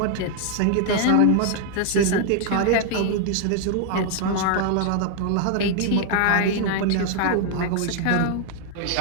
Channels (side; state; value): both; different; correlation 0.00